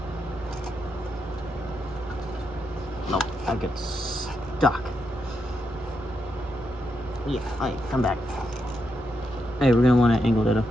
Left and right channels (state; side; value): normal; both; correlation 0.83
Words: No, I get stuck. Yeah, alright, come back. Hey, we're gonna want to angle that up